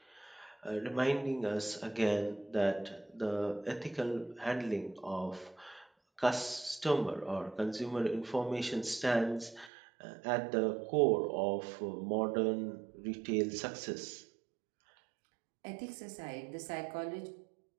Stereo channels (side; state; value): left; drops out; at 9.7 s